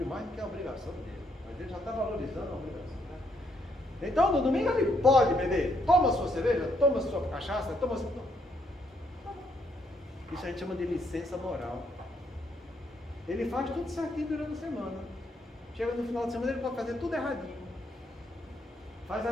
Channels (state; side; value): normal; both; correlation 0.73